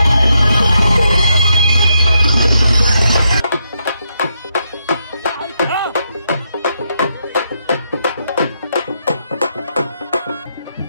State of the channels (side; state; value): both; inverted; correlation -0.80